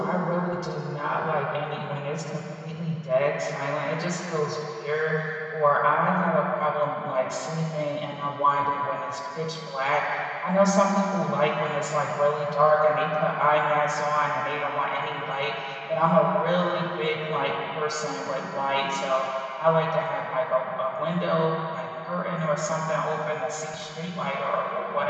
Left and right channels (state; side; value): identical; both; correlation 1.00